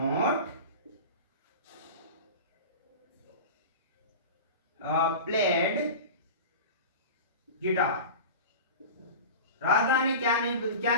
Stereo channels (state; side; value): inverted; both; correlation -0.32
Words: played guitar. Radha ने क्या